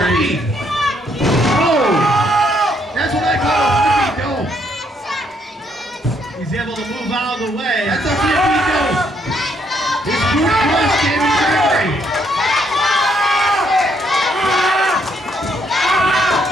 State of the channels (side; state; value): both; normal; correlation 0.72